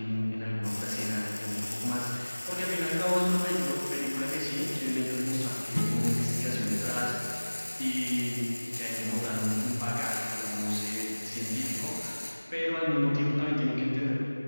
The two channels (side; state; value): both; inverted; correlation -1.00